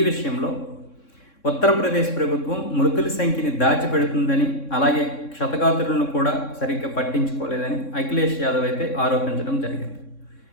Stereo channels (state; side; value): late; right; 3.6 ms